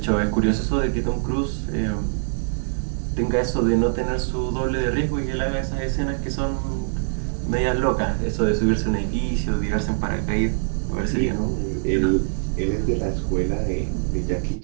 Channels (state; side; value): silent; left; digital silence